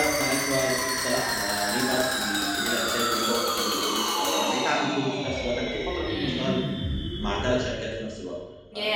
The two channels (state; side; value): identical; both; correlation 1.00